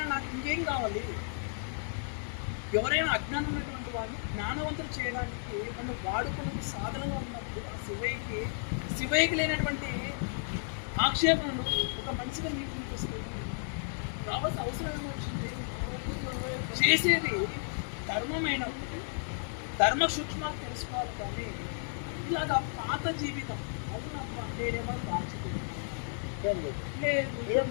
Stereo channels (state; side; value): silent; right; 56 dB below the other